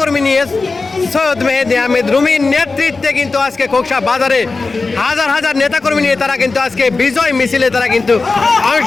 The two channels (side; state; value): right; quieter; 3.9 dB